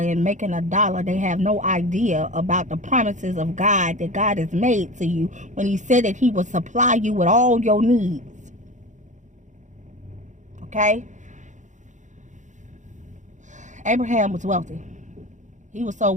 and making a dollar, they have no idea about the promises of God that God has made to you when he said that he will supply you with all your needs. Okay? Abraham was wealthy. He was so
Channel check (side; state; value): left; late; 0.35 ms